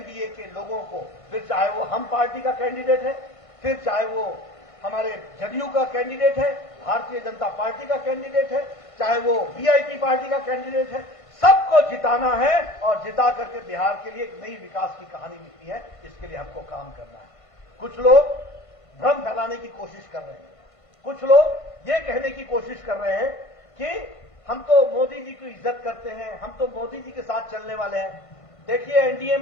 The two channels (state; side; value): late; right; 1.5 ms